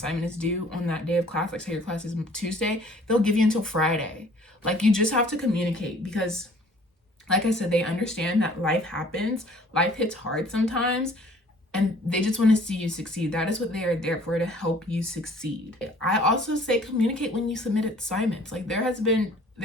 is due on that day of class, like say your class is Tuesday, they'll give you until Friday. Like, you just have to communicate, because like I said, they understand that life happens. Life hits hard sometimes, and they just want to see you succeed. That is what they are there for, to help you succeed. I also say communicate when you submit assignments. Like, there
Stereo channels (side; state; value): both; normal; correlation 0.54